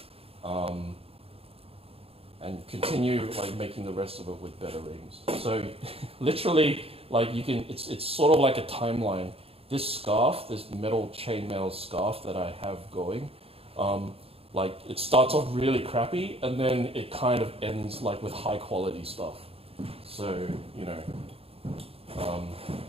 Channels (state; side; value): late; left; 0.28 ms